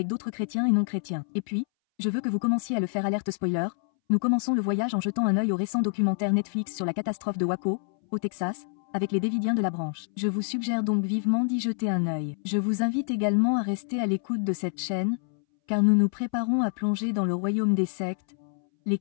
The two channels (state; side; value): silent; right; 60 dB below the other